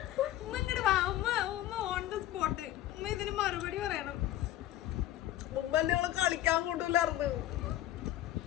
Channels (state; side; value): quieter; right; 13.7 dB